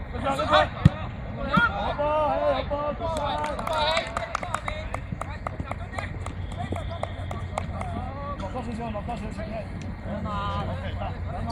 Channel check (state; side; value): identical; both; correlation 1.00